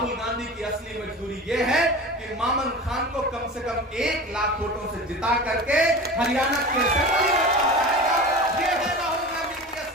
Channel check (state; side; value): normal; both; correlation 0.33